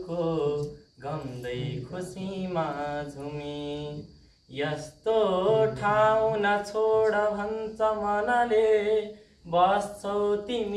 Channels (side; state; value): both; identical; correlation 1.00